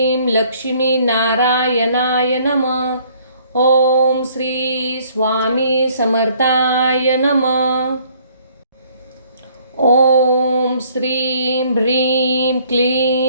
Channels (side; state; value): both; inverted; correlation -0.61